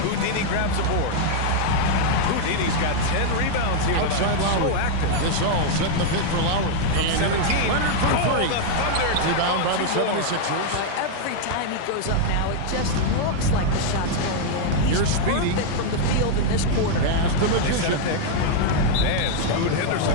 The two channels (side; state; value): both; different; correlation 0.00